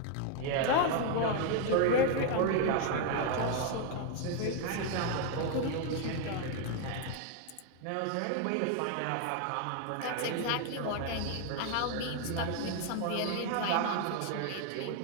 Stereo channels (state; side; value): different; both; correlation 0.00